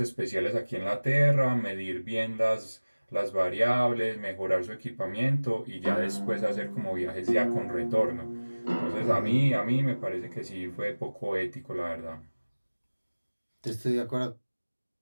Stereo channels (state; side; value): inverted; both; correlation -1.00